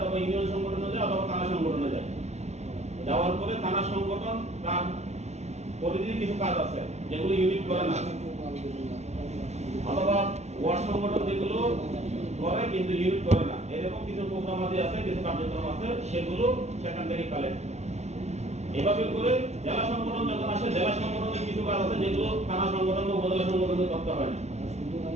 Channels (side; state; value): left; late; 0.32 ms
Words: ইউনিয়ন সংগঠনে যায়, অথবা থানা সংগঠনে যায়। যাওয়ার পরে থানা সংগঠন তার পরিধির কিছু কাজ আছে যেগুলো ইউনিট করে না, অথবা ওয়ার্ড সংগঠন যেগুলো করে কিন্তু ইউনিট করে না, এরকম কিছু প্রোগ্রাম আছে, কিছু কার্যক্রম আছে, সেগুলো সেখান থেকে কালেক্ট। এভাবে করে জেলা সংগঠন যখন আসে, জেলা সংগঠনের কিছু কাজ আছে যেগুলো থানা সংগঠন বা উপজেলা সংগঠনে করতে হয় না।